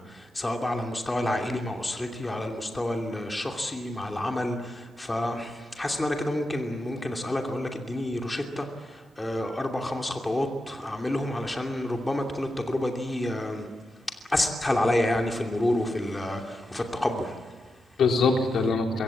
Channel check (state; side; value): normal; both; correlation 0.88